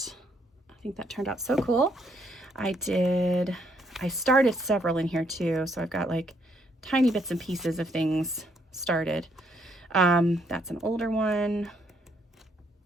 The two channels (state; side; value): normal; both; correlation 0.71